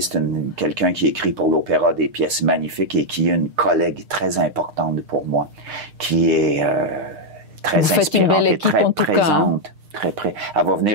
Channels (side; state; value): left; late; 6.6 ms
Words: quelqu'un qui écrit pour l'opéra des pièces magnifiques et qui est une collègue très importante pour moi, qui est très inspirante et très présente. Très près. Elle va